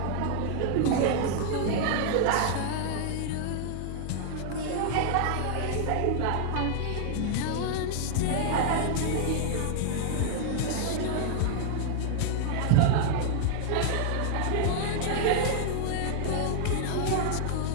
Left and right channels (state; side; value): different; both; correlation 0.00